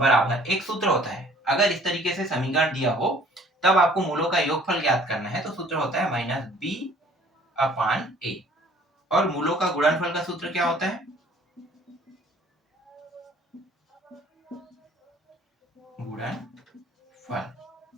एक सूत्र होता है, अगर इस तरीके से समीकरण दिया हो तब आपको मूलों का योगफल ज्ञात करना है, तो सूत्र होता है माइनस बी अपान ए। और मूलों का गुणनफल का सूत्र क्या होता है, गुणनफल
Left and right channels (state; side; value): normal; both; correlation 0.55